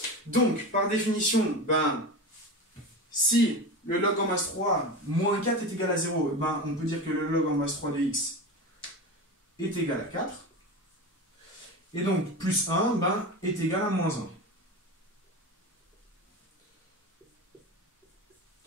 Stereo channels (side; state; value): both; normal; correlation 0.25